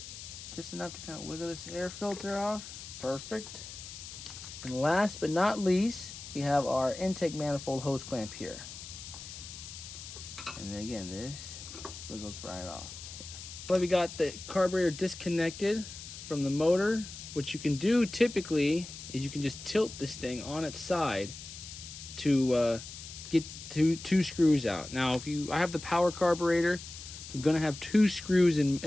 Just enough to kind of wiggle this air filter off. Perfect. And last but not least, we have our intake manifold hose clamp here. And then again, this wiggles right off. Well, we got the carburetor disconnected from the motor. What you can do typically is you can just tilt this thing on its side to get two screws out. Now, I have the power carburetor, so I'm going to have two screws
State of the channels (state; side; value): noise; left; hiss, 12 dB below the sound